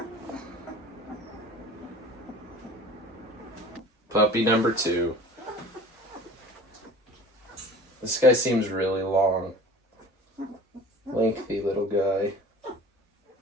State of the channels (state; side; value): normal; both; correlation 0.43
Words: Puppy number 2. This guy seems really long. Lengthy little guy.